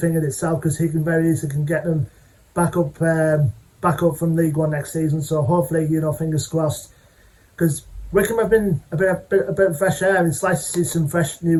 in itself, because he can very easily get them back up from League One next season. So hopefully, you know, fingers crossed, because Wycombe have been a bit of fresh air, and it's nice to see some fresh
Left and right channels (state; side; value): identical; both; correlation 1.00